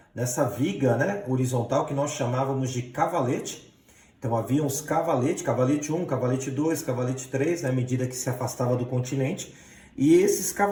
viga, né, horizontal, que nós chamávamos de cavalete. Então havia uns cavaletes, cavalete 1, cavalete 2, cavalete 3, à medida que se afastava do continente, e esses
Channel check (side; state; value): both; identical; correlation 1.00